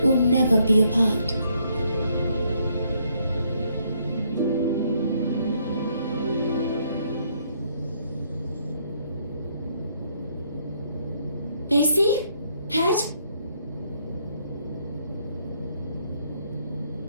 will never be apart. Basie? Head?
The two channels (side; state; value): both; inverted; correlation -0.71